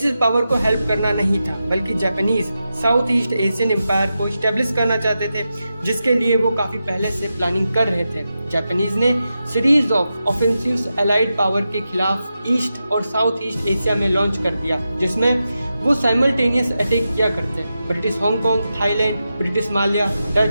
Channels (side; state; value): both; inverted; correlation -0.90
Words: पावर को हेल्प करना नहीं था, बल्कि Japanese South East Asian empire को स्टेब्लिश करना चाहते थे, जिसके लिए वो काफी पहले से प्लानिंग कर रहे थे। जापानीज ने series of offensives allied power के खिलाफ ईस्ट और साउथ ईस्ट एशिया में लॉन्च कर दिया, जिसमें वो साइमल्टेनियस अटैक किया करते। British Hong Kong, Thailand, British Malaya,